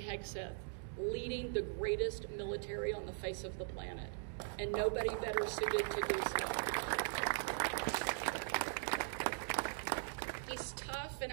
leading the greatest military on the face of the planet, and nobody better suited to do so. He's tough, and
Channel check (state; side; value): silent; left; digital silence